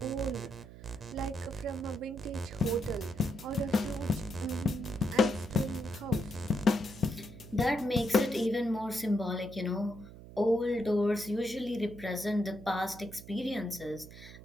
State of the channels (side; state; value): right; noise; hum, 16 dB below the sound